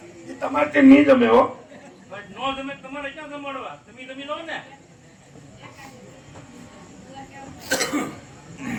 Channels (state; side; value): identical; both; correlation 1.00